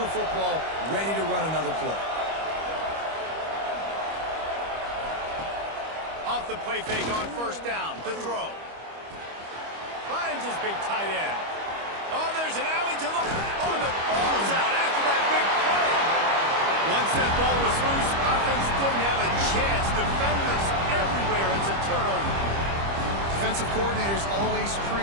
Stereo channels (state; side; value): late; left; 25 ms